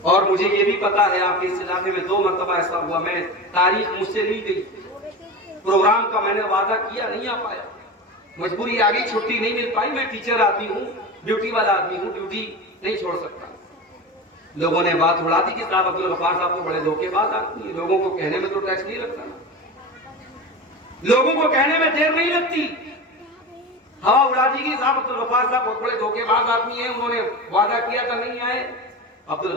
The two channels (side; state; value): both; normal; correlation 0.27